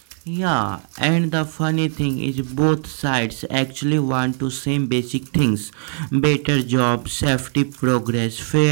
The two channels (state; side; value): silent; left; 56 dB below the other